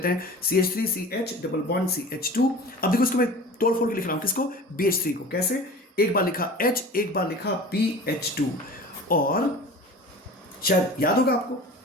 हैं, CH3CH डबल बॉन्ड CH2। अब देखो इसको मैं तोड़ फोड़ के लिख रहा हूं, किसको? BH3 को। कैसे? एक बार लिखा H, एक बार लिखा BH2, और शायद याद होगा आपको,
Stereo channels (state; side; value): normal; both; correlation 0.38